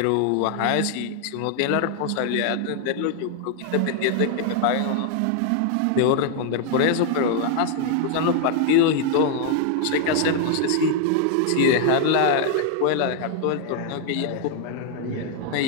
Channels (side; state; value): both; different; correlation 0.00